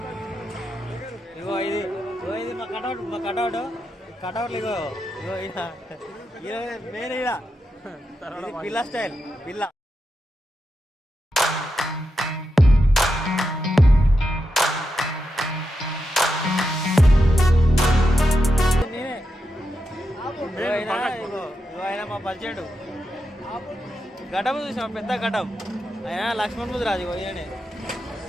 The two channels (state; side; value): normal; both; correlation 0.87